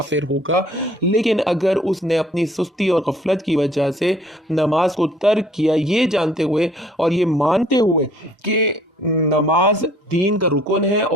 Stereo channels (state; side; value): normal; both; correlation 0.57